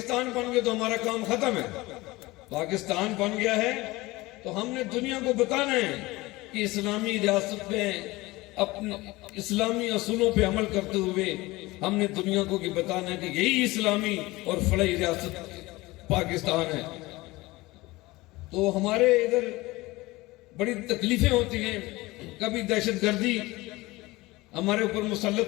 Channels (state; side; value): quieter; right; 20.7 dB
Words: بن گیا تو ہمارا کام ختم ہے. پاکستان بن گیا ہے تو ہم نے دنیا کو بتانا ہے کہ اسلامی ریاست میں اپنے اسلامی اصولوں پہ عمل کرتے ہوئے ہم نے دنیا کو بتانا ہے کہ یہی اسلامی اور فلاحی ریاست پاکستان ہے. تو ہمارے ادھر بڑی تکلیفیں ہوتی ہیں. کبھی دہشت گردی ہمارے اوپر